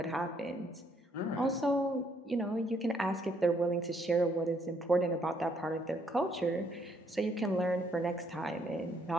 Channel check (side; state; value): both; normal; correlation 0.70